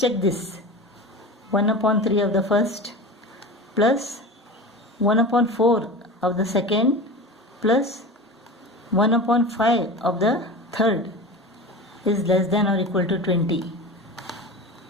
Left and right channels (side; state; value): both; normal; correlation 0.31